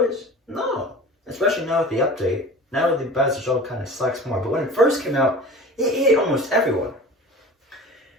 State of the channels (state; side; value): normal; both; correlation 0.38